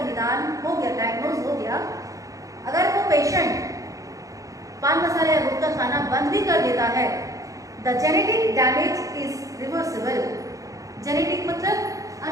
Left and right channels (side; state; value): left; late; 0.16 ms